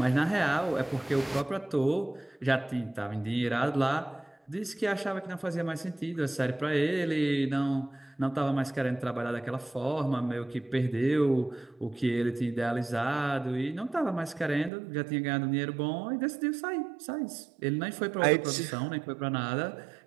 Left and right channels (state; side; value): drops out; left; at 14.7 s